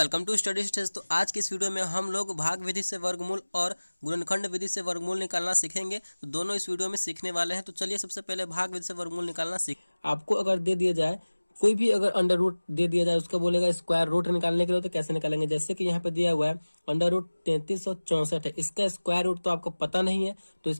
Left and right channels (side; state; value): both; inverted; correlation -1.00